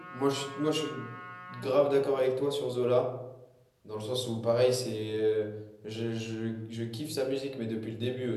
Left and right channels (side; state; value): both; identical; correlation 1.00